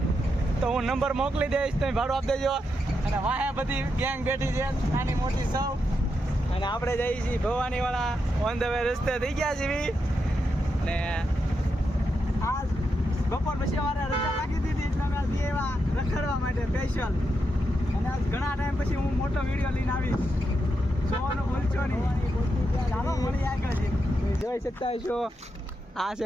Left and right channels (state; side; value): normal; both; correlation 0.84